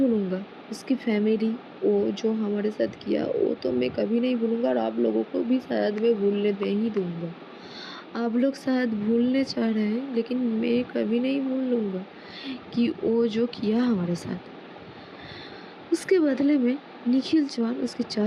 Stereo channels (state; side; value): identical; both; correlation 1.00